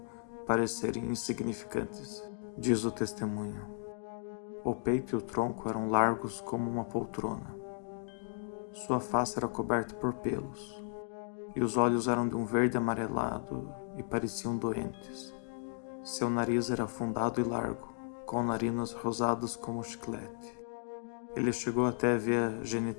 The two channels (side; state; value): right; silent; digital silence